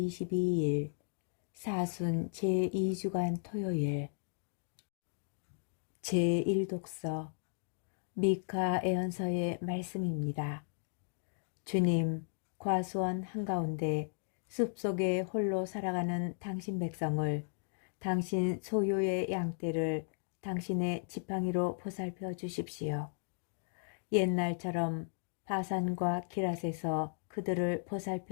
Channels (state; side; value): silent; right; digital silence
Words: 사순 제2주간 토요일 제1독서 미카 애언서의 말씀입니다. 주님, 과수원 한가운데 숲속에 홀로 살아가는 당신 백성을, 당신 소유의 양떼를 당신의 지팡이로 보살펴 주십시오. 옛날처럼 바산과 기랏에서 그들을